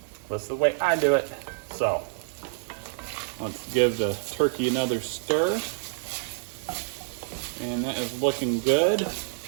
That's the way I do it. So let's give the turkey another stir. And that is looking good. And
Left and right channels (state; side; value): silent; left; digital silence